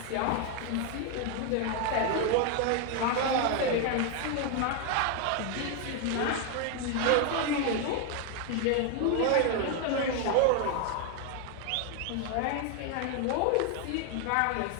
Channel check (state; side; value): different; both; correlation 0.01